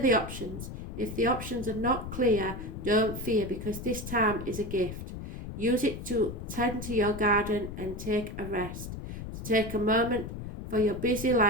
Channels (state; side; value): noise; left; rumble, 8 dB below the sound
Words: the options. If the options are not clear, don't fear, because this time is a gift. Use it to tend to your garden and take a rest. To take a moment for your busy